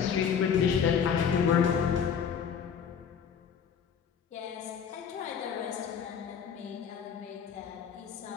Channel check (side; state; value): right; quieter; 7.3 dB